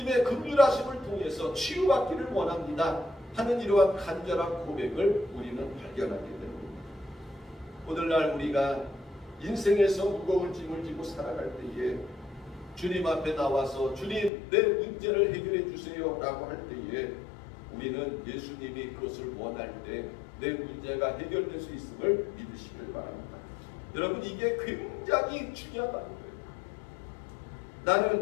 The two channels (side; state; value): right; drops out; at 14.3 s